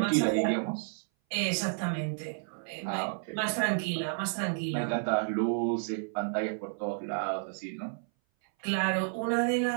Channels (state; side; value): silent; left; 57 dB below the other